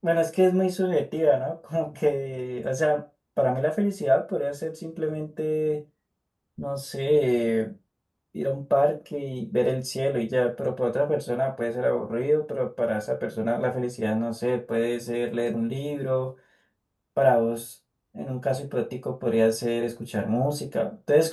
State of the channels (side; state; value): both; identical; correlation 1.00